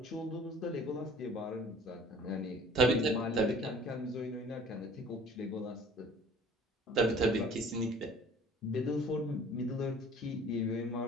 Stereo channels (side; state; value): both; normal; correlation 0.49